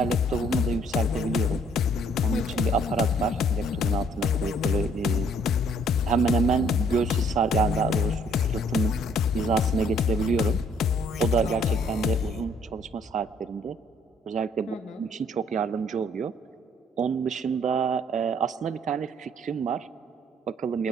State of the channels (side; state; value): both; normal; correlation 0.62